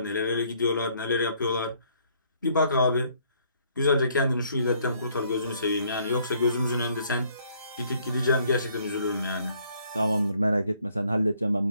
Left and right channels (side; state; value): both; inverted; correlation -0.66